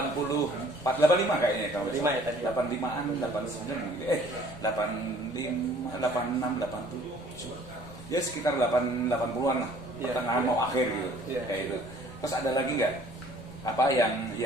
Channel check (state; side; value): noise; left; rumble, 18 dB below the sound